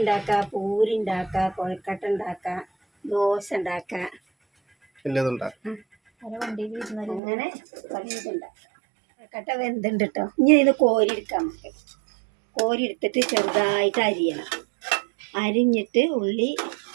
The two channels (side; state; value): left; drops out; at 7.2 s